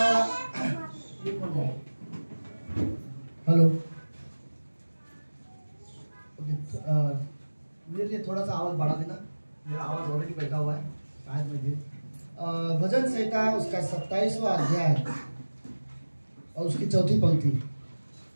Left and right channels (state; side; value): inverted; both; correlation -1.00